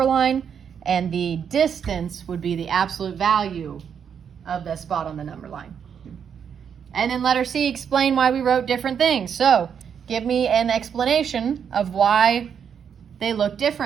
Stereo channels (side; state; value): left; quieter; 7.6 dB